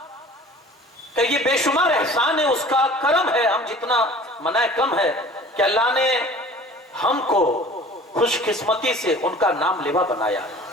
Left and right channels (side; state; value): both; normal; correlation 0.45